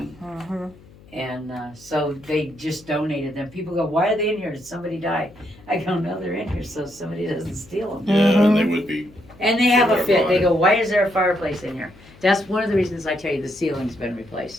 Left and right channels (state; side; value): noise; left; hum, 24 dB below the sound